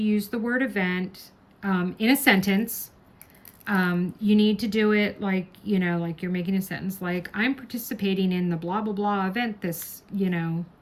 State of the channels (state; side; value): identical; both; correlation 1.00